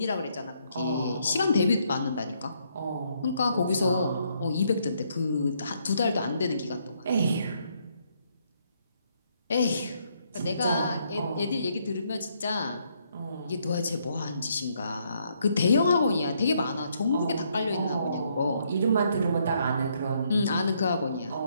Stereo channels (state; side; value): inverted; both; correlation -0.73